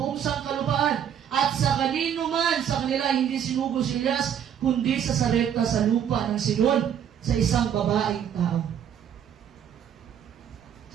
buong sangkalupaan at sa kanino man sa kanila hindi sinugo si Elias kundi sa Sarepta sa lupa ng Sidon sa isang babaeng tao.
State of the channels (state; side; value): quieter; left; 9.0 dB